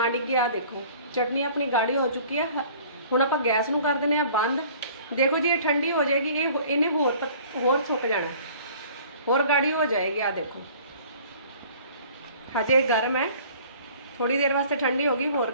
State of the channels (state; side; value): inverted; both; correlation -0.50